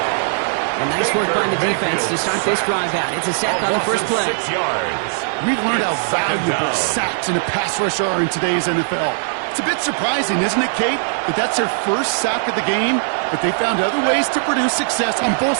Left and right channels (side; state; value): left; silent; digital silence